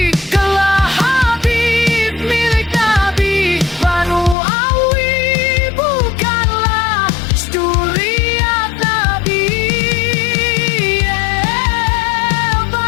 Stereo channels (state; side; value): drops out; right; at 4.4 s